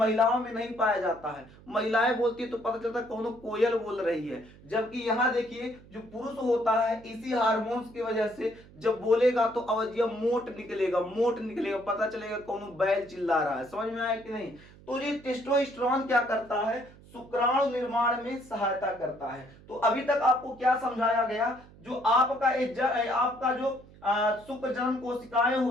में नहीं पाया जाता है, महिलाएं बोलती है तो पता चलता है कौनो कोयल बोल रही है। जबकि यहाँ देखिए जो पुरुष होता है इसी हार्मोन्स की वजह से जब बोलेगा तो आवाजिया मोट निकलेगा, मोट निकलेगा, पता चलेगा कौनो बैल चिल्ला रहा है। समझ में आया कि नहीं? तो ये टेस्टोस्टेरोन क्या करता है? शुक्राणु निर्माण में सहायता करता है। तो अभी तक आपको क्या समझाया गया? जो आपका जो शुक्र जन्म कोशिकाएं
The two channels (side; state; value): right; noise; hum, 22 dB below the sound